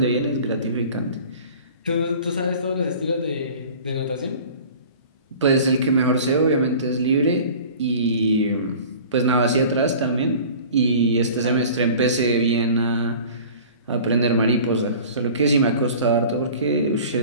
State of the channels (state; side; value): inverted; both; correlation -0.43